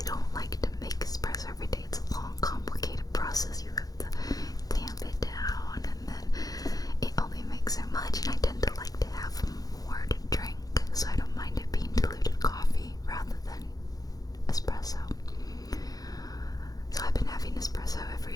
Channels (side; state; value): right; late; 0.18 ms